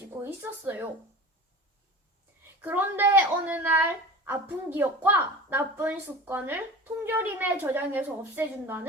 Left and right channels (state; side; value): normal; both; correlation 0.35